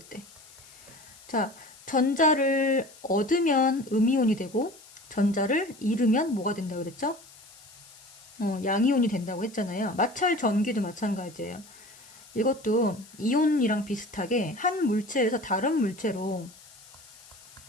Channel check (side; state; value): left; noise; hiss, 22 dB below the sound